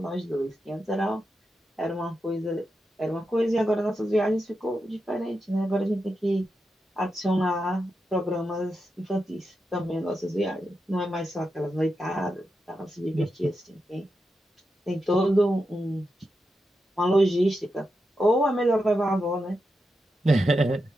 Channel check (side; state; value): both; normal; correlation 0.88